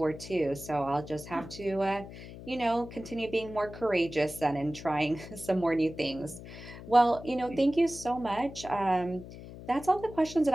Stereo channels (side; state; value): left; noise; hum, 14 dB below the sound